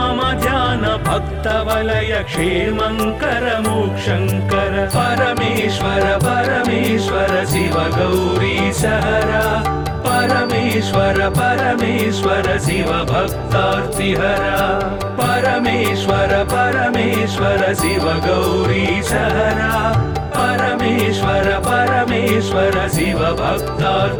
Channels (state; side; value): identical; both; correlation 1.00